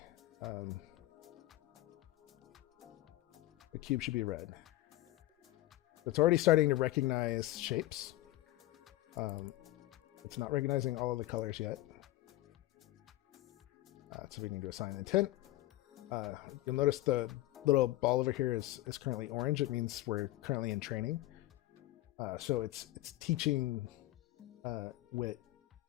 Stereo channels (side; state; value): right; quieter; 16.3 dB